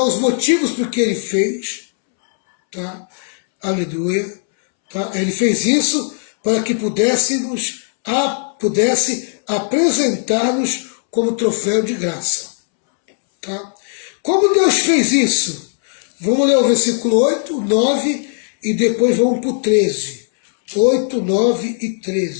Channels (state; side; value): silent; right; 68 dB below the other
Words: os motivos por que ele fez. Tá? Aleluia. Tá? Ele fez isso para que pudesse apresentar-nos como troféu de graça. Tá? Como Deus fez isso? Vamos ler o versículo 8, 9 e depois vamos para o 13. 8, 9 e